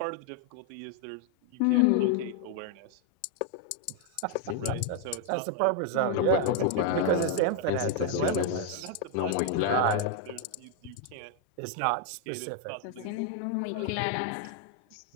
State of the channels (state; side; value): different; both; correlation 0.01